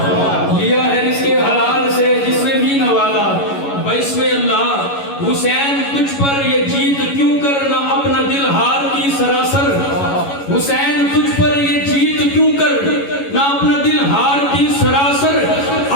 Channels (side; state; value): right; late; 11 ms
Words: लिया है रिज़्क़े हलाल से जिसने भी नवाला बाइस्मे अल्लाह। हुसैन तुझ पर ये जीत क्यों करना अपना दिल हार की सरासर, हुसैन तुझ पर ये जीत क्यों कर ना अपना दिल हार की सरासर।